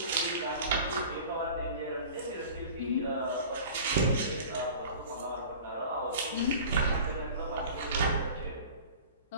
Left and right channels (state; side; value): inverted; both; correlation -0.41